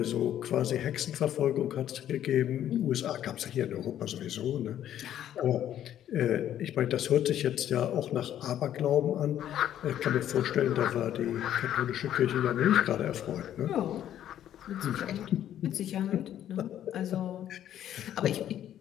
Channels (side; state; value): right; quieter; 11.1 dB